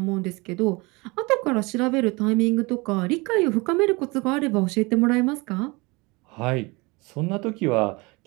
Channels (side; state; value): left; quieter; 25.7 dB